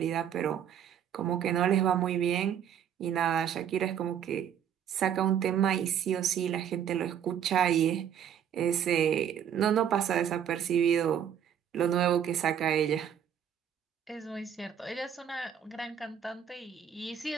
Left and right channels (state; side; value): quieter; left; 9.1 dB